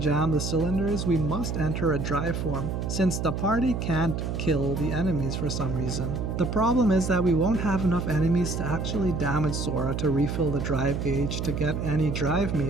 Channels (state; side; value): noise; right; hum, 3 dB below the sound